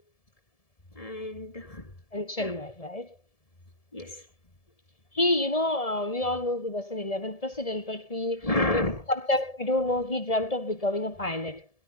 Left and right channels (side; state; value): right; late; 1.7 ms